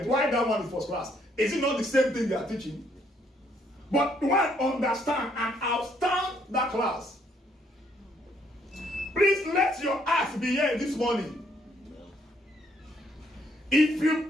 Why that one is first class? Is it not the same thing they are teaching? But one understand and outstand that class. Please let your act be here this morning. If you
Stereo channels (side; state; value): both; normal; correlation 0.69